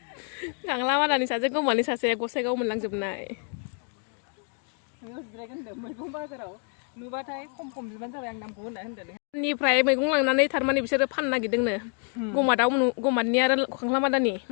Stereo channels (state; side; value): quieter; right; 39.8 dB